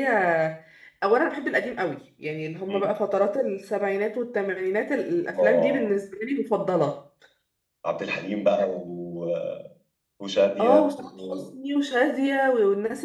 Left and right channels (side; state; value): both; identical; correlation 1.00